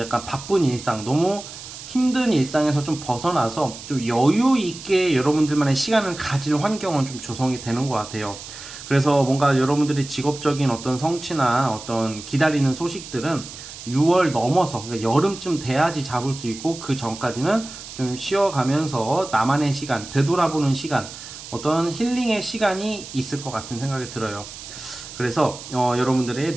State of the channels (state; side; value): noise; right; hiss, 13 dB below the sound